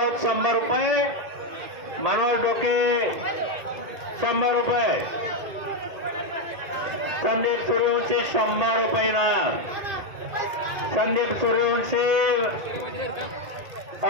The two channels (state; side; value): late; left; 1.8 ms